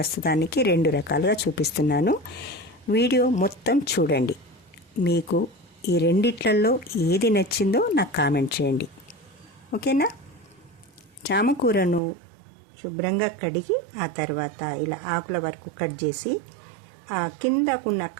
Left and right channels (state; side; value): drops out; left; at 12.0 s